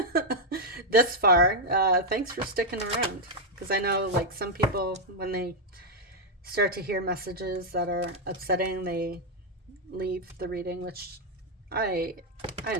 this far, thanks for sticking around. Because I know, like, some people, when they start to hear messages that are upsetting, they leave the reading, which I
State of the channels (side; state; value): both; normal; correlation -0.01